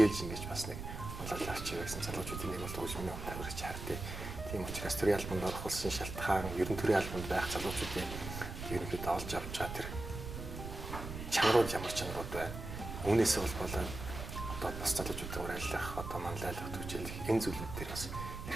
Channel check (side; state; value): right; noise; rumble, 8 dB below the sound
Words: ингэж бас нэг онлайн арч байсан залуучуудын нэг бол төвшмөний тавирч хардыг. Тийм учраас төрийн албанд орох болсон шалтгаан ер нь төрийн албанд байх залуучуудын ерөнхийдөө олж авч байгаа тэр чанарууд ямар чанарууд байна. Үүнээс болоод одоо бас залуучуудаар ажиллах одоо манлайлах төвчлэх энэ зүйлүүд дээр бас